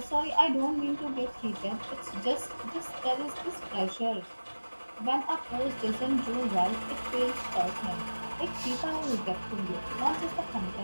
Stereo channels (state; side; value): inverted; both; correlation -1.00